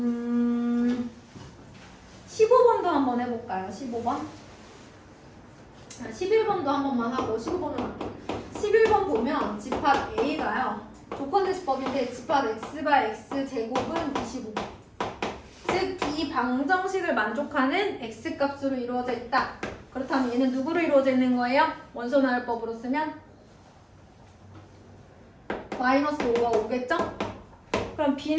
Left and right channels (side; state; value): both; identical; correlation 1.00